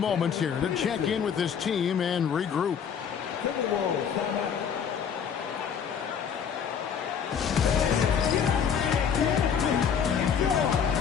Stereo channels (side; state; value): right; quieter; 7.4 dB